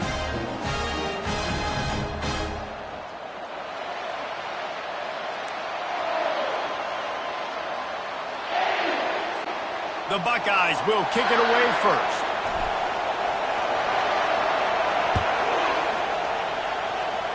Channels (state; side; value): identical; both; correlation 1.00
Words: The Buckeyes will kick it away first.